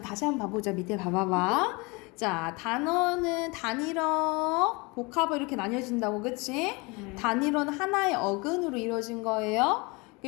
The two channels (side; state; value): right; quieter; 27.1 dB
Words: 다시 한번 봐보자. 밑에 봐봐봐. 자, 단어는 단일어, 복합어 이렇게 나뉘어진다고, 그치? 단일어는 하나의 어근으로 이루어진 거예요.